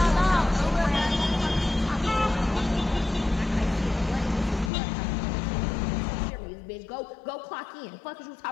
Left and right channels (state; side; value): drops out; right; at 4.7 s